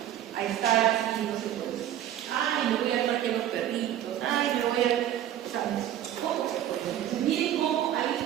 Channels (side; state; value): left; quieter; 11.5 dB